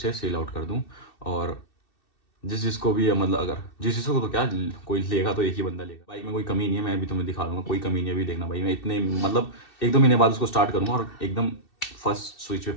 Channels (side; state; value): right; late; 2.7 ms